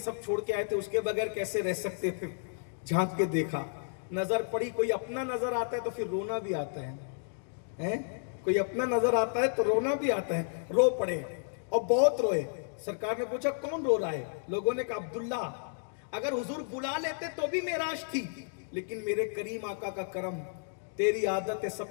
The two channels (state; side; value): silent; right; digital silence